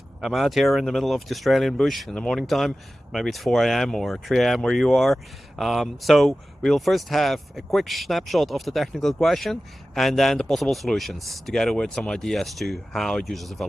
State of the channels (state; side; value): normal; both; correlation 0.95